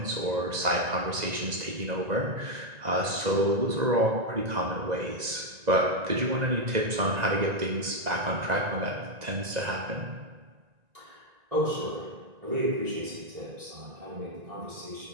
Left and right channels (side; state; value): left; late; 1.9 ms